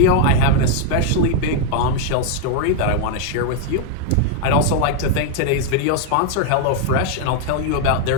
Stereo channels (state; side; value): different; both; correlation 0.00